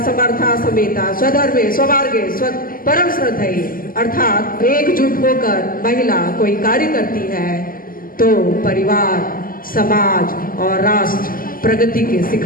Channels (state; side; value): late; right; 0.41 ms